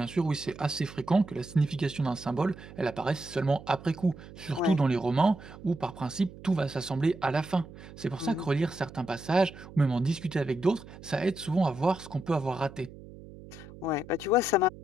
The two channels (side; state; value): right; noise; hum, 17 dB below the sound